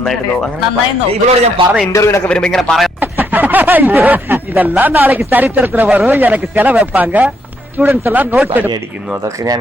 ഇവളോട് ഞാൻ പറഞ്ഞ ഇന്റർവ്യൂലൊക്കെ വരുമ്പോ ഇങ്ങനെ പറയാം, இதெல்லாம் நாளைக்கு சரித்திரத்துல வரும், எனக்கு செலவு வைப்பாங்க, സ്റ്റുഡൻസ് എല്ലാം നോട്ട് അടിക്കുന്നു. അതൊക്കെ ഞാൻ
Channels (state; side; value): normal; both; correlation 0.75